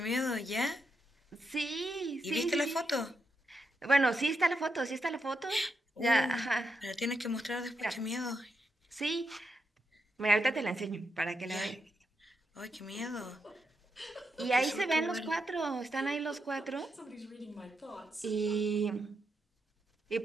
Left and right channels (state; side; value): normal; both; correlation 0.84